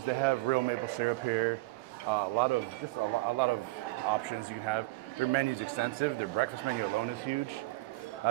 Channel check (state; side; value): quieter; left; 22.1 dB